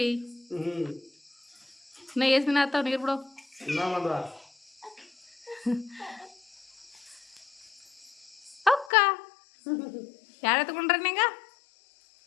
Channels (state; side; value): drops out; right; at 8.9 s